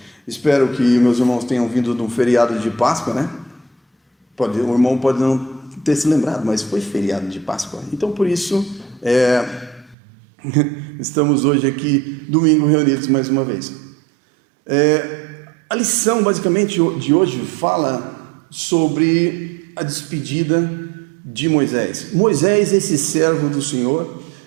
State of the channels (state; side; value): drops out; left; at 10.0 s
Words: Espero que meus irmãos tenham vindo de um feriado de Páscoa, né? O irmão pode não ter se lembrado, mas foi feriado de Páscoa. Então, por isso, estamos hoje aqui, domingo, reunidos mais uma vez. A lição, basicamente, de hoje fala sobre a despedida de Moisés. Moisés, esse servo do Senhor,